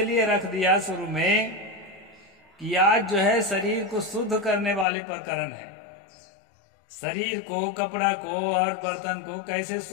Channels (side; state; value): right; drops out; at 4.9 s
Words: रख दिया शुरू में कि आज जो है शरीर को शुद्ध करने वाले प्रकरण है। शरीर को, कपड़ा को और बर्तन को कैसे